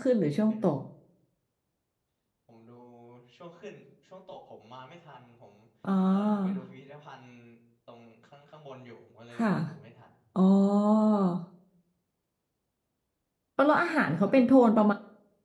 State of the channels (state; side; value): identical; both; correlation 1.00